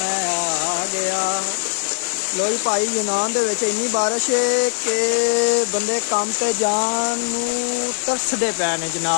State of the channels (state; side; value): silent; right; 56 dB below the other